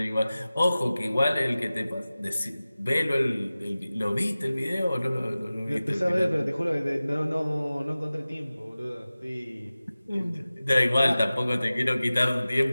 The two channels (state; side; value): inverted; both; correlation -0.97